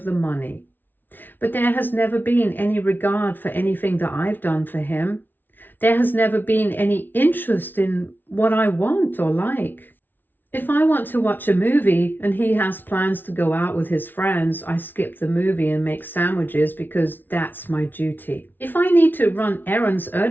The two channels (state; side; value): late; right; 0.092 ms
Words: the money. But there has never been any regard for anything that I've done for him. There has never been any interest in what I want or like. If I want to watch a movie and he has plans to go out with his friends, I skip the movie and make sandwiches because that's my duty. If I need to run errands